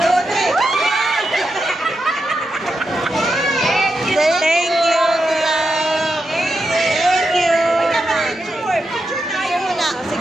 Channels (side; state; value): both; normal; correlation 0.86